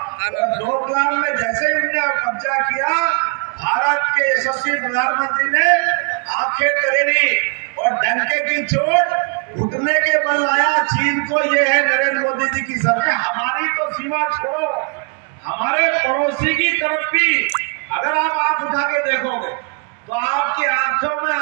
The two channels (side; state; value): left; quieter; 36.4 dB